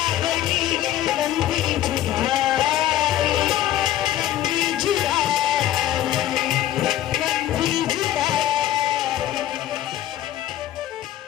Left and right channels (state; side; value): quieter; right; 13.0 dB